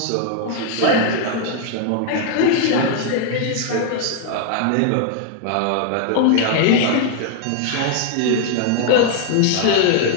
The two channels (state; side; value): different; both; correlation 0.00